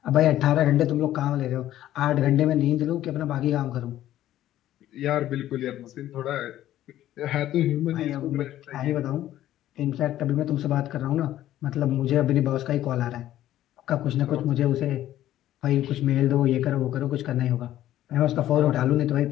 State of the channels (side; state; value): right; quieter; 13.2 dB